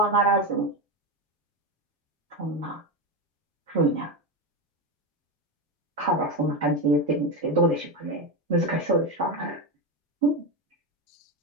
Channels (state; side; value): normal; both; correlation 0.14